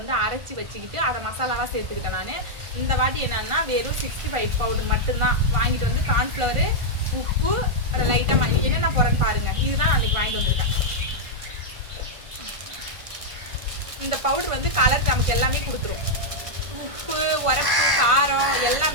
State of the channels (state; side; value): late; left; 1.5 ms